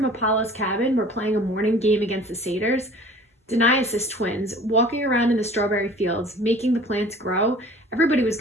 Apollo's cabin were playing a morning game against the satyrs. Dionysus twins, walking around in the strawberry fields, making the plants grow. Everybody was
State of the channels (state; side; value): normal; both; correlation 0.47